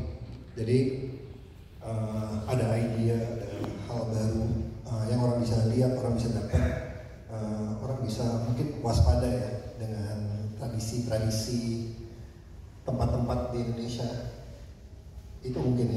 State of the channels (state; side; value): identical; both; correlation 1.00